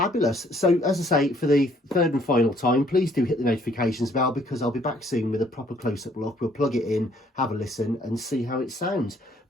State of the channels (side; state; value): both; normal; correlation 0.63